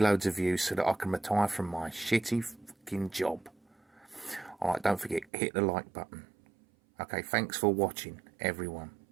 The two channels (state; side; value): drops out; left; at 5.2 s